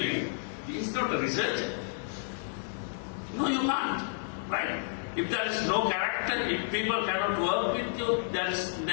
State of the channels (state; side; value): silent; right; digital silence